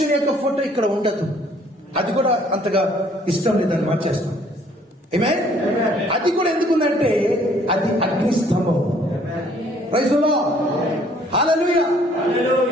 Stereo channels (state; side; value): normal; both; correlation 0.60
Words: యొక్క ఫోటో ఇక్కడ ఉండదు. అది కూడా అంతగా ఇష్టం లేదని మార్చేస్తాం. ఏమే అది కూడా ఎందుకుందంటే అది అగ్ని స్తంభం. ప్రైజ్ ది లార్డ్, హల్లెలూయా.